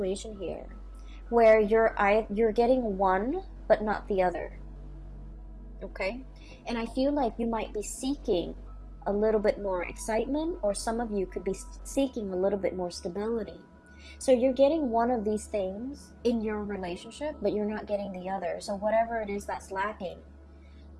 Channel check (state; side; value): identical; both; correlation 1.00